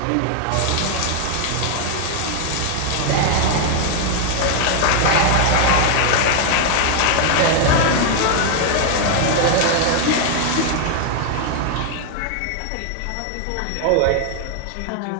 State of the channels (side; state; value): both; different; correlation 0.00